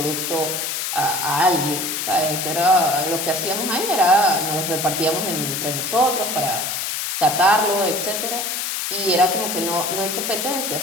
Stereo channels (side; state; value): left; noise; hiss, 2 dB below the sound